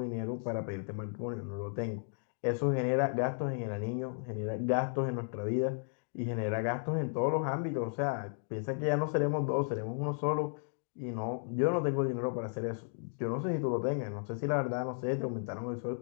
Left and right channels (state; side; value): silent; right; 55 dB below the other